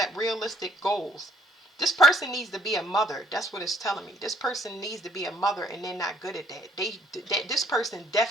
realistic goals. This person needs to be a mother. That's what it's telling me. This person needs to be a mother, and they're not good at that. This person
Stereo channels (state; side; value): normal; both; correlation 0.65